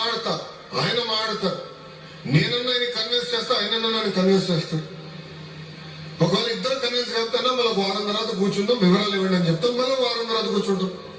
ఆయన మాట్లాడతాడు. నేనన్నా ఆయన కన్విన్స్ చేస్తా, ఆయనన్నా నన్ను కన్విన్స్ చేస్తాడు. ఒకవేళ ఇద్దరు కన్విన్స్ చేస్తానా మళ్ళీ వారం తర్వాత కూర్చుందాం, వివరాలు ఇవ్వండి అని చెప్తాం. మళ్ళీ వారం తర్వాత కూర్చుంటాం.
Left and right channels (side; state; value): both; identical; correlation 1.00